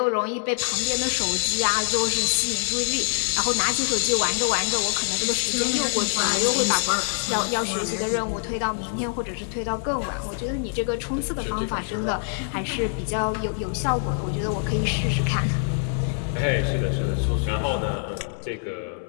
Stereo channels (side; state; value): right; silent; 62 dB below the other